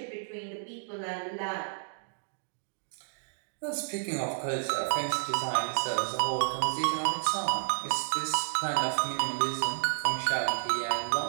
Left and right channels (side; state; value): left; silent; digital silence